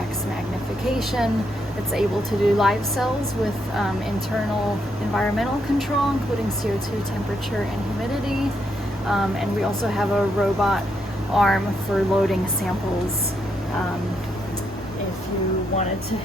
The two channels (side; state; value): both; normal; correlation 0.78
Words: magnification. It's able to do live cells with internal environmental control, including CO2 temperature and humidity. And we also have a robot arm for loading samples if you wanted to